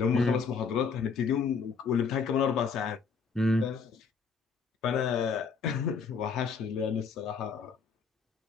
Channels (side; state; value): right; quieter; 5.5 dB